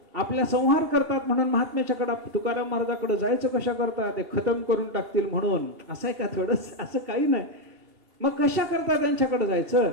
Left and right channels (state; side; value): late; left; 2.8 ms